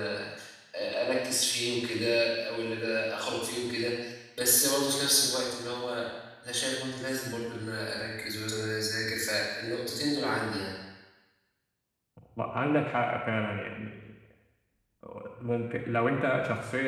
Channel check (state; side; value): identical; both; correlation 1.00